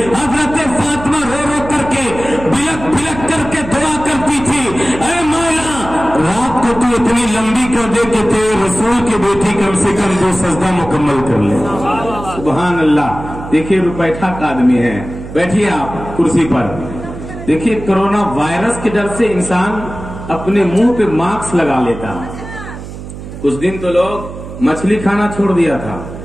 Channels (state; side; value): noise; right; hum, 12 dB below the sound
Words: हजरत फातिमा रो रो करके, बिलक बिलक करके दुआ करती थी, ऐ मौला रात को तू इतनी लंबी कर दे कि तेरे रसूल की बेटी कम से कम 2 सजदा मुकम्मल कर ले। सुभान अल्लाह। देखिए रुपैठा का आदमी है, बैठिए आप कुर्सी पर। देखिए कोरोना वायरस के डर से इंसान अपने मुंह पे मास्क लगा लेता है। कुछ दिन तो लोग मछली खाना छोड़ दिया था,